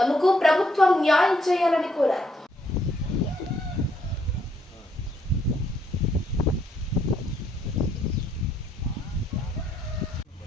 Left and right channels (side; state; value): both; normal; correlation 0.72